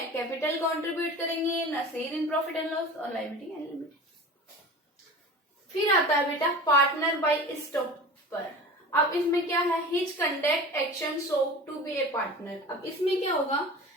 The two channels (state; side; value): normal; both; correlation 0.35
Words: कैपिटल कंट्रीब्यूट करेंगे, ना share in profit and loss और लायबिलिटी एंड लिमिट। फिर आता है बेटा पार्टनर बाय स्टॉपर। अब इसमें क्या है, his conduct action show to be a partner. अब इसमें क्या होगा